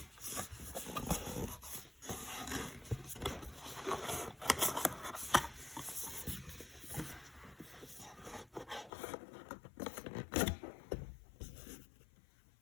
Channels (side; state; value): right; drops out; at 8.9 s